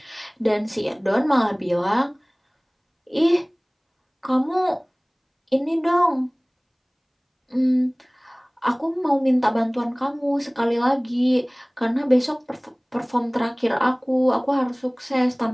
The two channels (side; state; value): both; identical; correlation 1.00